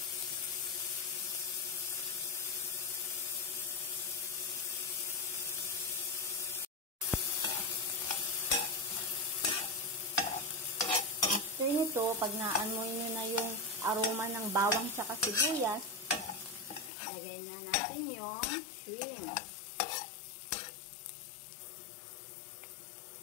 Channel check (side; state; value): right; drops out; at 16.9 s